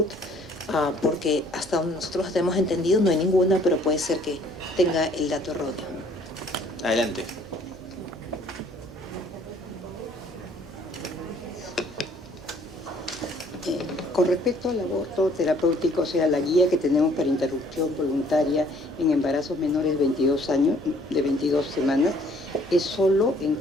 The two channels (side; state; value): right; noise; hum, 21 dB below the sound